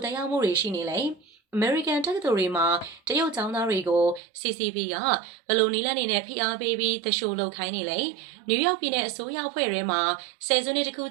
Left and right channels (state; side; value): drops out; left; at 4.2 s